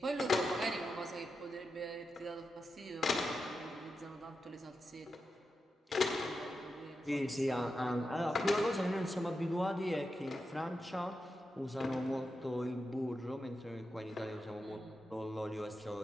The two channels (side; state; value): both; normal; correlation 0.89